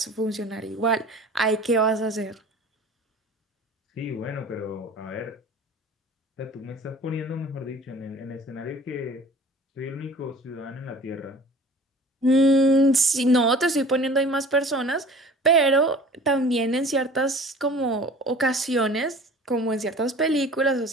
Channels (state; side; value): normal; both; correlation 0.45